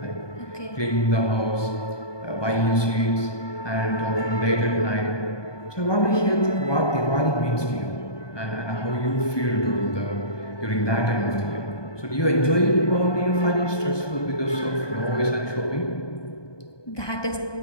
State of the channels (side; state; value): right; late; 1.2 ms